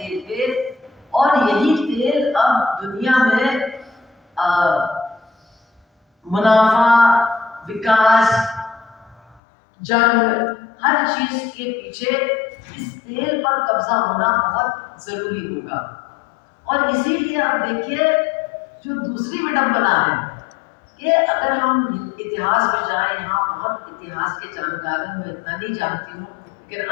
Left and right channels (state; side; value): drops out; right; at 9.4 s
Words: کے، اور یہی تیل اب دنیا میں منافع، وکاس، جنگ، ہر چیز کے پیچھے اس تیل پر قبضہ ہونا بہت ضروری ہوگا۔ اور اسی لیے آپ دیکھیے جو دوسری وڈمبنا ہے کہ اگر ہم اتہاس میں جائیں، یہاں بہت اتہاس کے جانکار ہیں، میں اتنا نہیں جانتی ہوں لیکن